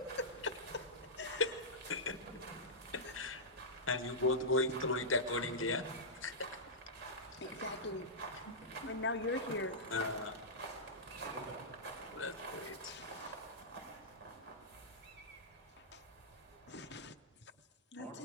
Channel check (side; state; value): both; normal; correlation -0.13